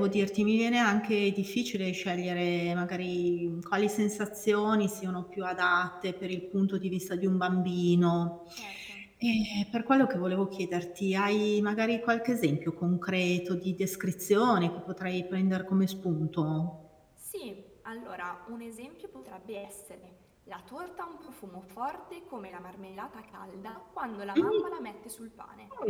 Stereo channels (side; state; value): both; identical; correlation 1.00